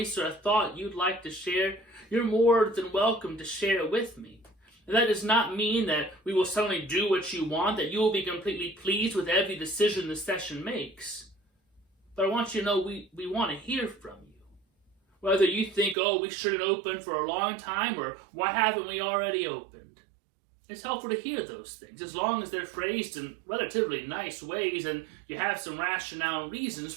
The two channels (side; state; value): left; drops out; at 16.0 s